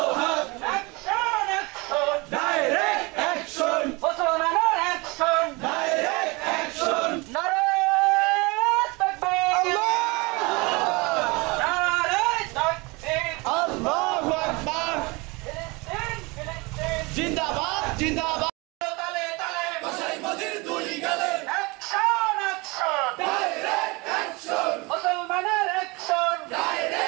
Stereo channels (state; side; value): quieter; left; 26.0 dB